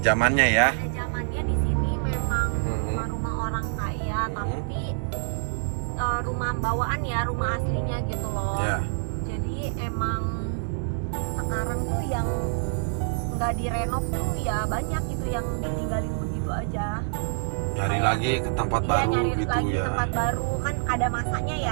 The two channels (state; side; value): silent; left; digital silence